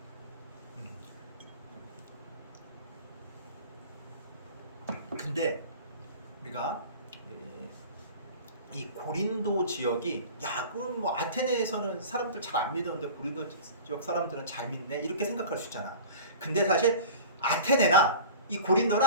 근데 우리가 이 고린도 지역이 야 그럼 뭐 아테네에서는 사람들 잘 안 믿었는데 고린도 지역 사람들은 잘 믿네 이렇게 생각할 수 있잖아. 근데 사실 아테네나 이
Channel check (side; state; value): both; inverted; correlation -0.39